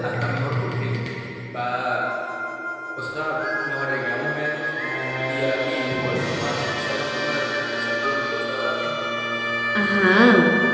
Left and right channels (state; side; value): identical; both; correlation 1.00